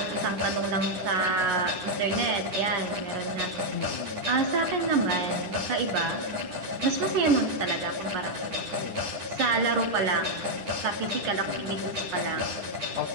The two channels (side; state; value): left; late; 10 ms